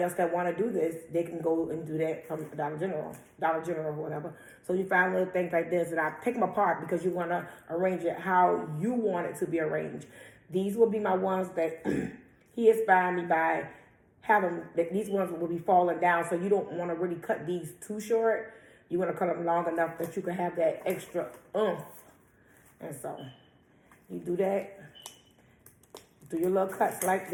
else that want to do this, they can go and do that from Dollar General or whatever. So you find little things like this, and I pick them apart because you want to arrange it how you want it to be arranged. These will be my ones that he inspired me by having, that these ones will be falling down, so you don't want to really cut these too short. You want to cut them long enough that you can have that extra oomph. And so you do that, do your little cuts like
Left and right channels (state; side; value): identical; both; correlation 1.00